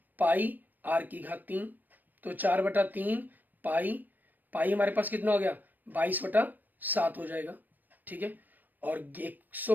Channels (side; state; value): left; late; 0.085 ms